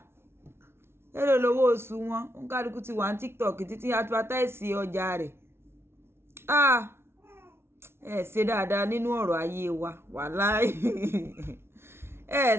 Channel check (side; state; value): left; late; 0.12 ms